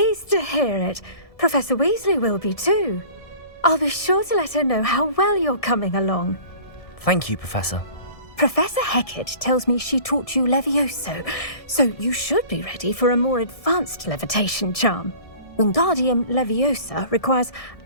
to hear it. Professor Weasley will be too. I'll be sure to let her know how well you're coming along. Thank you, Professor. Professor Hecat tells me she taught you Levioso, so you should be ready for a more advanced levitation charm. Wingardium Leviosa requires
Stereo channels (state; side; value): late; right; 1.6 ms